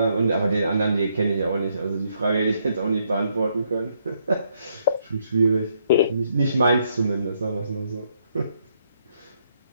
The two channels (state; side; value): inverted; both; correlation -0.74